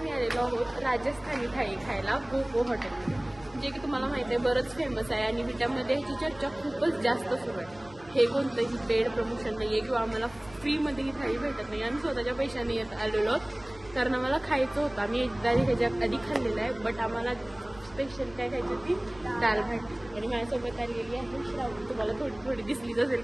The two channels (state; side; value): noise; right; hum, 22 dB below the sound